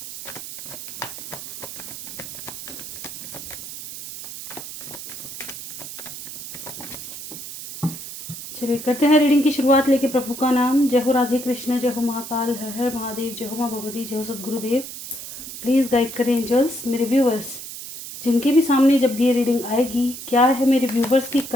चलिए करते हैं रीडिंग की शुरुआत। लेके प्रभु का नाम। जय हो राधे कृष्ण, जय हो महाकाल, हर हर महादेव, जय हो माँ भगवती, जय हो सदगुरुदेव। प्लीज़ गाइड करें एंजल्स। मेरे व्यूवर्स जिनके भी सामने जब भी ये रीडिंग आएगी, क्या है मेरे व्यूवर्स की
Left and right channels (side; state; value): right; noise; hiss, 10 dB below the sound